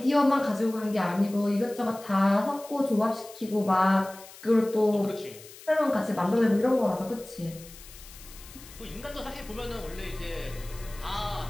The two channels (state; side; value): noise; left; hiss, 18 dB below the sound